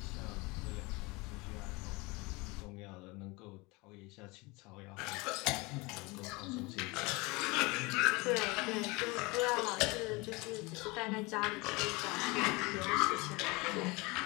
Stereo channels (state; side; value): quieter; right; 25.0 dB